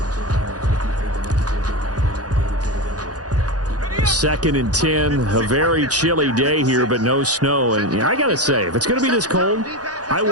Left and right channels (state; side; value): late; left; 0.68 ms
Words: 2nd and 10, a very chilly day here, but no snow. And I got to say, if it's going to be this cold, I